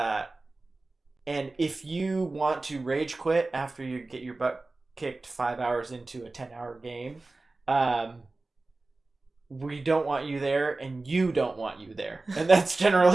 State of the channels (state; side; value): quieter; left; 3.3 dB